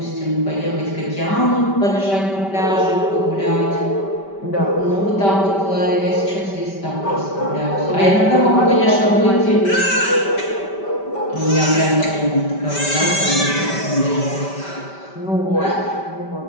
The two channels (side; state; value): right; late; 5.1 ms